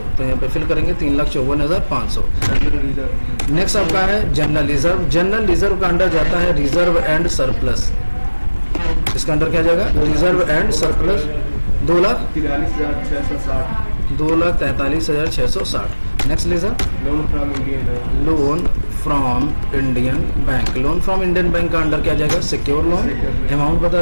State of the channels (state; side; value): inverted; both; correlation -1.00